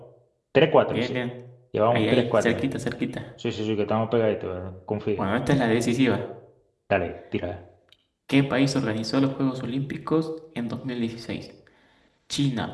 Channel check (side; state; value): both; identical; correlation 1.00